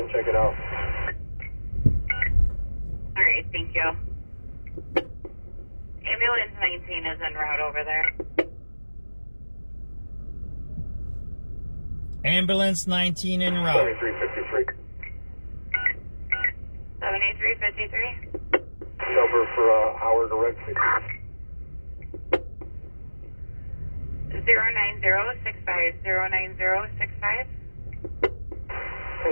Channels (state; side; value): inverted; both; correlation -1.00